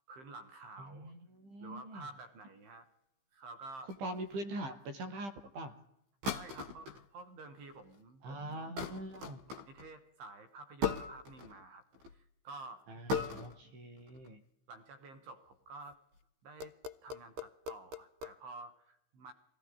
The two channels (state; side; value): late; left; 15 ms